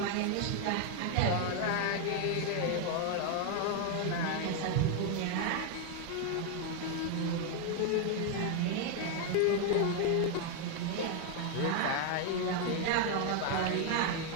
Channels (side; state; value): both; different; correlation 0.01